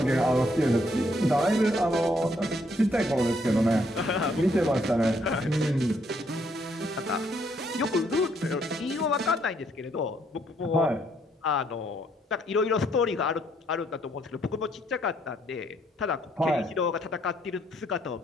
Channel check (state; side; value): normal; both; correlation 0.70